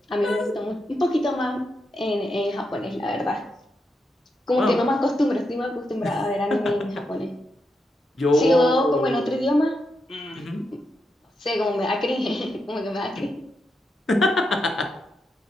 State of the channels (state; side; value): normal; both; correlation 0.84